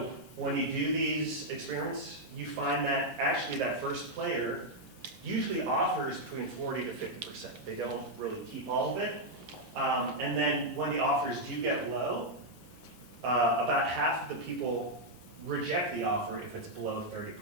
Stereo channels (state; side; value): late; right; 7.5 ms